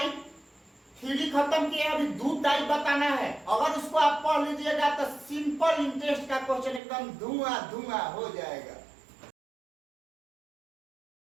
थ्योरी खत्म किया, अभी 2 टाइप बताना है। अगर उसको आप पढ़ लीजिएगा तो सिंपल इंटरेस्ट का क्वेश्चन एकदम धुआं धुआं हो जाएगा।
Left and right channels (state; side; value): drops out; left; at 6.8 s